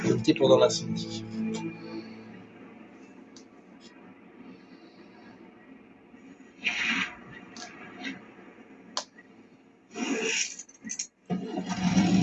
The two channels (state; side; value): identical; both; correlation 1.00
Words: Limité pendant l'incendie.